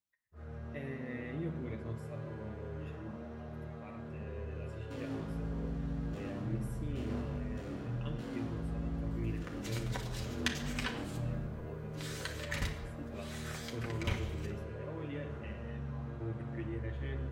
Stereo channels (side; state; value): both; identical; correlation 1.00